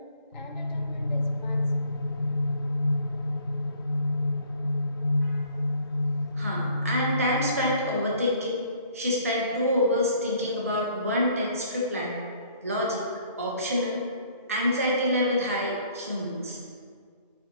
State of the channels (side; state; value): both; inverted; correlation -0.58